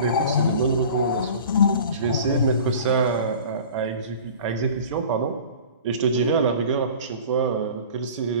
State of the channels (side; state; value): both; inverted; correlation -0.41